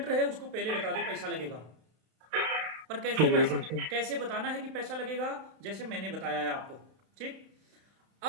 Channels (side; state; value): left; late; 31 ms